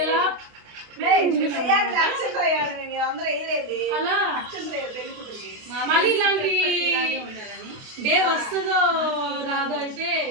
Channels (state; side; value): late; left; 28 ms